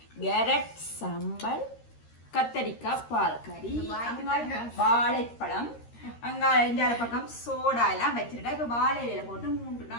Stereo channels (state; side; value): late; right; 13 ms